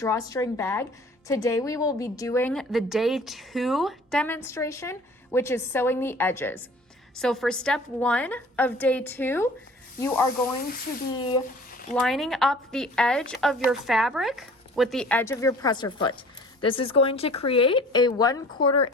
bag. Today we will be doing the day 2 demonstration, which is sewing the edges. So for step 1 of day 2, you are going to be lining up the edge of your fabric with the edge of your presser foot. This is going to create a 1/4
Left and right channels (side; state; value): both; normal; correlation 0.48